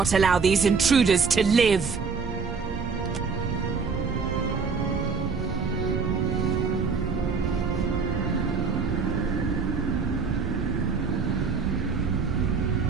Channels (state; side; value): quieter; left; 5.2 dB